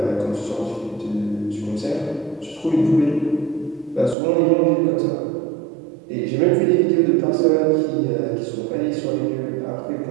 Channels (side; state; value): left; drops out; at 4.2 s